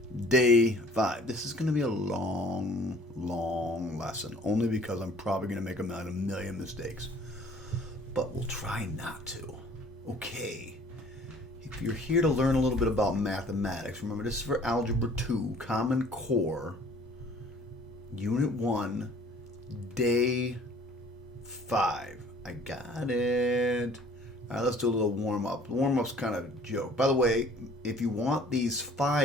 Day 5. This is going to be a long lesson, only because I'm probably going to make a million mistakes. But we'll try not to. Okay. If you're here to learn a little bit about mathematics, remember this is for Algebra 2, Common Core, Unit 1, Day 5. I got it. All right, let's do a little warm-up. The warm-up's kind of a joke. By the way, if you want these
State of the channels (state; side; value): normal; both; correlation 0.53